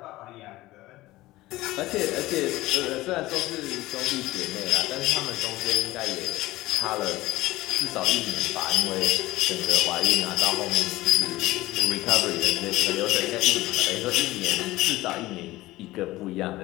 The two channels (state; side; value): quieter; right; 17.9 dB